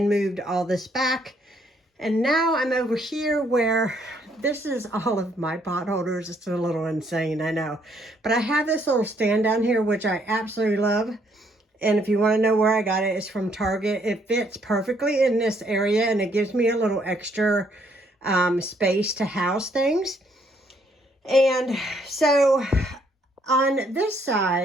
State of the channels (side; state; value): both; normal; correlation 0.69